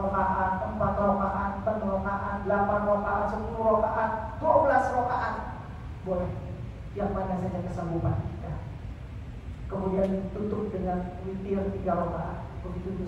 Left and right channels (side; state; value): both; identical; correlation 1.00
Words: rakaat, 4 rakaat, 6 rakaat, 8 rakaat, 10 rakaat, 12 rakaat, boleh, yang mana saja kesanggupan kita. Kemudian tutup dengan witir 3 rakaat, begitu